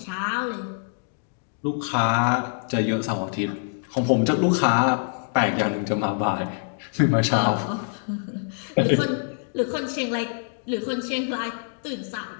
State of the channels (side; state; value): right; silent; digital silence